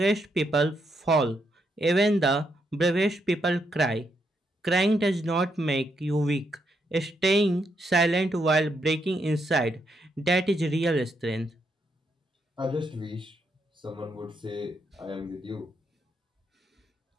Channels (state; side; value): normal; both; correlation 0.79